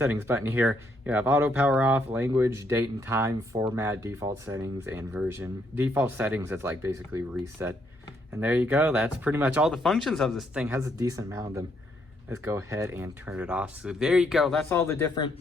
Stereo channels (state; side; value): normal; both; correlation 0.73